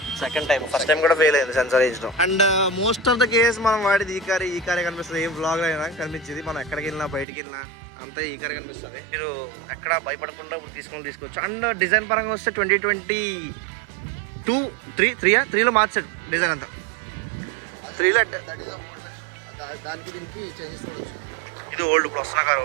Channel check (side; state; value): left; drops out; at 7.2 s